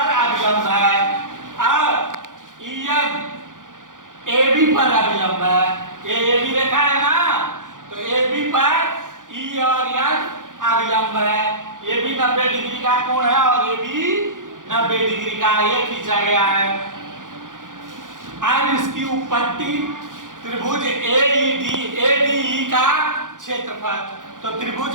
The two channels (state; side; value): late; left; 0.88 ms